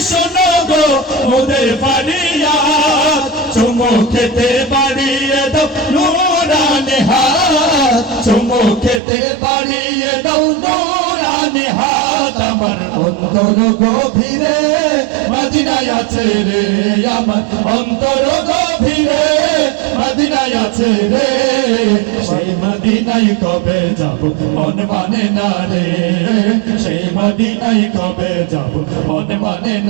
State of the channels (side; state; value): left; drops out; at 9.0 s